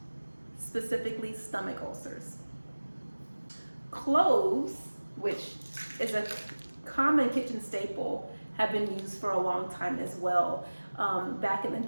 specifically stomach ulcers. Cloves, which is a common kitchen staple, have been used for a long time as well. Back in the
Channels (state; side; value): inverted; both; correlation -1.00